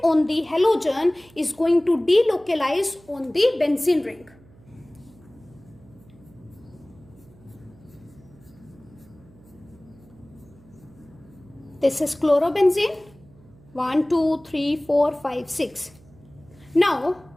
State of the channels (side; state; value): right; noise; hum, 26 dB below the sound